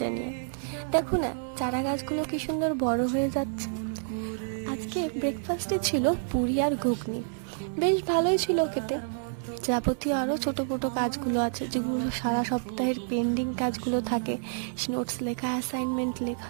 নিয়ে। দেখো না, চারা গাছগুলো কি সুন্দর বড় হয়ে যাচ্ছে। আজকে ব্রেকফাস্টে ছিল পুরি আর ঘুগনি, বেশ ভালোই ছিল খেতে। যাবতীয় আরও ছোটো মোটো কাজগুলো আছে, যেগুলো সারা সপ্তাহের পেন্ডিং কাজগুলো থাকে, নোটস লেখা, অ্যাসাইনমেন্ট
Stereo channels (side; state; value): left; silent; digital silence